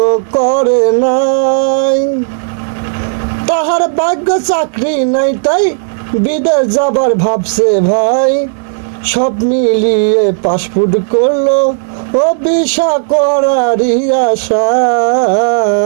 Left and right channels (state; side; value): silent; left; digital silence